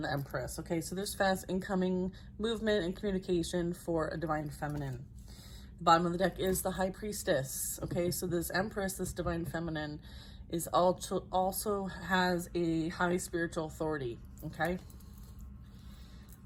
the Empress. Okay, so there's fast incoming movement and communication for a divine feminine. The bottom of the deck is the High Priestess. Okay, so this Empress, this divine feminine, is also has a high spiritual authority. Okay.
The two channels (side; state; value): both; identical; correlation 1.00